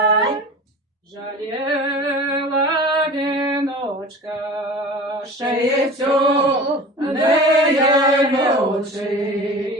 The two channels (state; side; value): normal; both; correlation 0.37